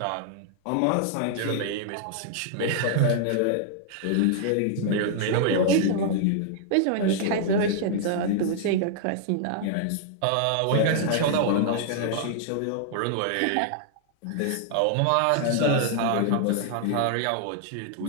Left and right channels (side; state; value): both; different; correlation -0.01